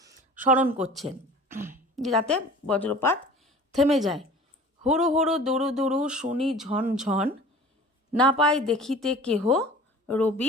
স্মরণ করছেন যাতে বজ্রপাত থেমে যায়। হুড়ু হুড়ু দুরু দুরু শুনি ঝন ঝন, না পাই দেখিতে কেহ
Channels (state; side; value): normal; both; correlation 0.42